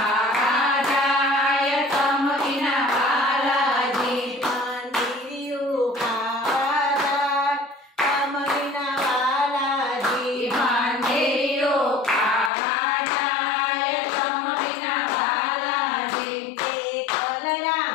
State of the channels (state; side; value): drops out; right; at 12.5 s